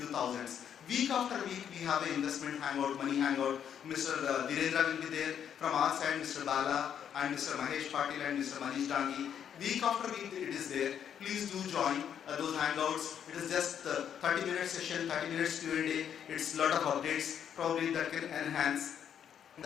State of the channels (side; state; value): right; quieter; 8.8 dB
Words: thousands. Week after week, we have an investment hangout, money hangout. Mr. Dhirendra will be there. From our side, Mr. Bala and Mr. Mahesh Patil and Mr. Manish Dangi. Week after week, it is there. Please do join those hangouts. It is just 30-minute session, 30 minutes Q&A. It's a lot of updates, probably that can enhance.